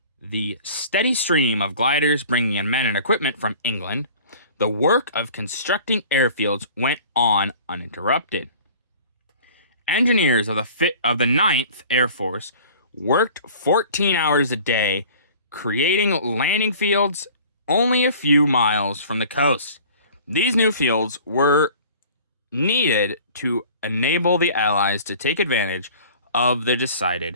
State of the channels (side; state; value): both; inverted; correlation -0.46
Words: the steady stream of gliders bringing in men and equipment from England, the work of constructing airfields went on uninterrupted. Engineers of the 9th Air Force worked 14 hours a day, creating landing fields only a few miles from the coast. These new fields were needed to enable the Allies to take advantage of the decided